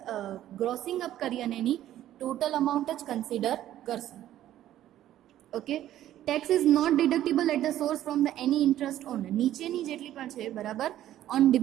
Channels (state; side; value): quieter; left; 12.7 dB